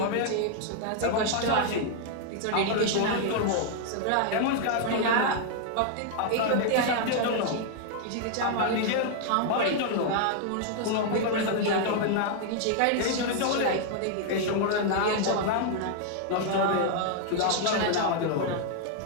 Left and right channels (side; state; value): both; different; correlation -0.01